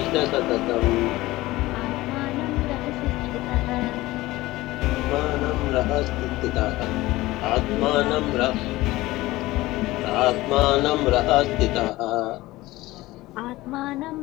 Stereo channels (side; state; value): right; quieter; 18.5 dB